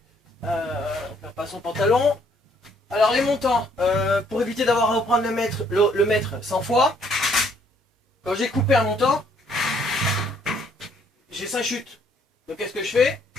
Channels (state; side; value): normal; both; correlation 0.65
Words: On perd pas son pantalon. Alors, les montants, pour éviter d'avoir à reprendre le mètre 100 fois, quand j'ai coupé un montant, j'ai 5 chutes. Donc, qu'est-ce que je fais?